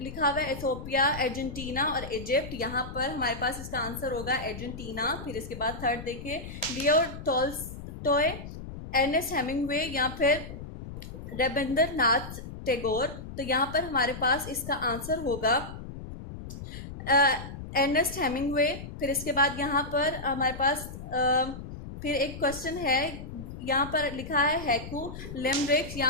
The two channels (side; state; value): left; noise; rumble, 11 dB below the sound